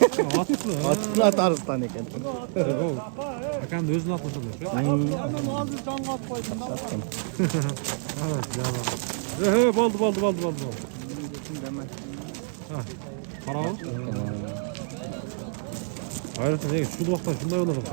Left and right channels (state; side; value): silent; left; 60 dB below the other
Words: Atı. Atı Arıstan eken. Bakan da özünü atmasın. Hemen ağzı can kat koydum. Evet canım. Baldı. Para ol. Hayret ne? Şu vaktan şunday olalım.